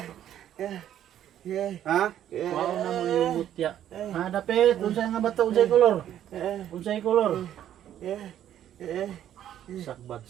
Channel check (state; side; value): quieter; left; 11.0 dB